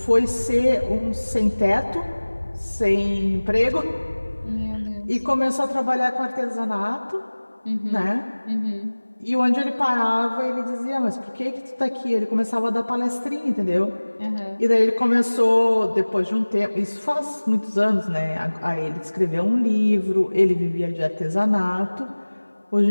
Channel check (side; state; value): both; inverted; correlation -1.00